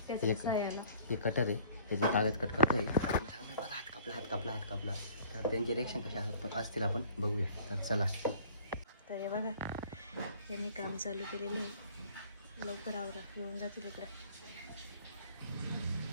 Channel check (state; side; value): inverted; both; correlation -0.53